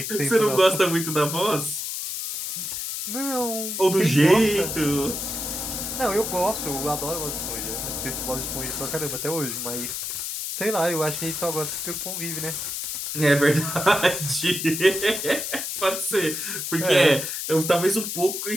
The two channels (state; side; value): noise; left; hiss, 4 dB below the sound